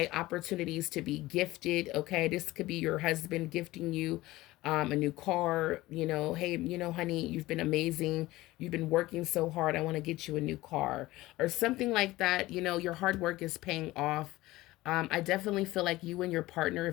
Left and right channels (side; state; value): right; quieter; 18.2 dB